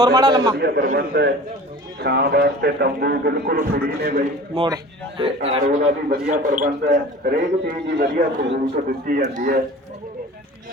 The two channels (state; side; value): normal; both; correlation 0.41